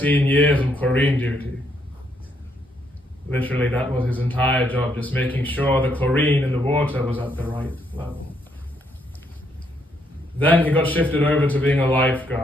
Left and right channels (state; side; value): normal; both; correlation 0.73